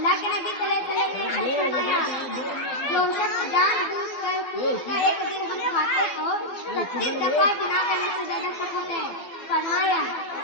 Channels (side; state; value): right; late; 12 ms